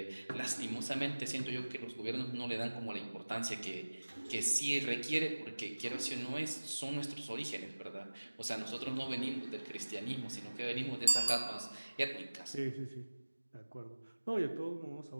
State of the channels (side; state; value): both; inverted; correlation -1.00